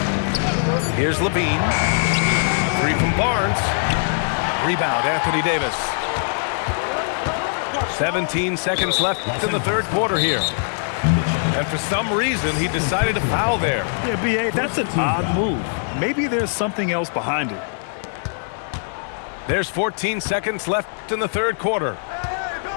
Here's Levine. 3 from Barnes. Rebound, Anthony Davis. 17 seconds left in the third quarter here. And for some reason, he decided to foul there. Yeah, B.A., that's an odd move. Maybe there's something else behind it. There's 14 seconds left in the third quarter.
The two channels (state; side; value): silent; right; 64 dB below the other